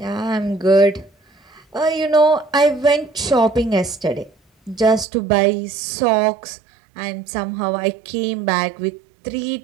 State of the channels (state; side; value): drops out; left; at 5.1 s